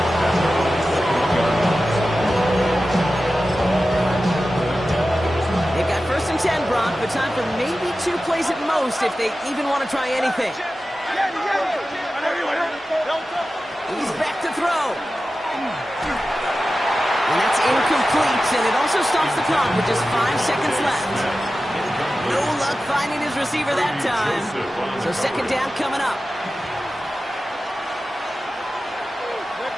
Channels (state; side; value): normal; both; correlation 0.94